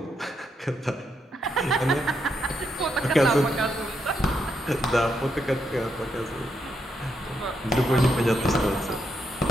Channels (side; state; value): both; normal; correlation 0.80